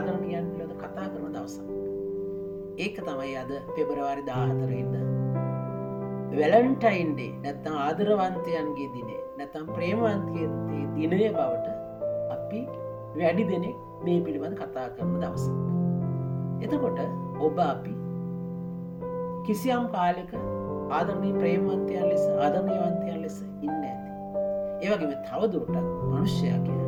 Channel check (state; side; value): identical; both; correlation 1.00